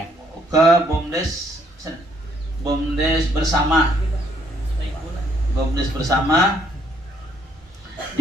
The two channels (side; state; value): both; normal; correlation 0.67